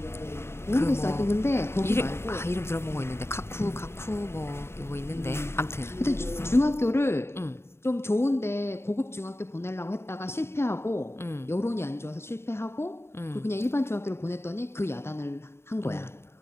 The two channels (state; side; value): late; right; 0.12 ms